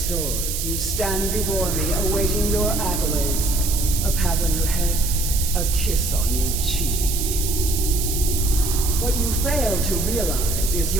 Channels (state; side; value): noise; right; hiss, 4 dB below the sound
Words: you stand before me awaiting your accolades. A pat on your head, a kiss on your cheek. What you fail to realize is